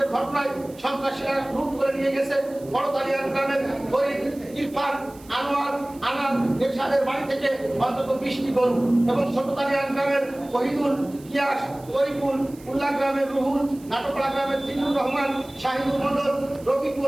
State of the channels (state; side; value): noise; right; hiss, 24 dB below the sound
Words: ঘটনায় সন্ত্রাসীরা লুট করে নিয়ে গেছে বড়তালিয়ান গ্রামের গরিব ইরফান, আনোয়ার, আনাদ এরশাদের বাড়ি থেকে অন্তত 20টি গরু এবং ছোটতালিয়ান গ্রামের শহীদুল, ইয়াস, তরিকুল, উল্লাহ গ্রামের রুহুল, নাটকলা গ্রামের জিল্লুর রহমান, শাহিদুল মন্ডল,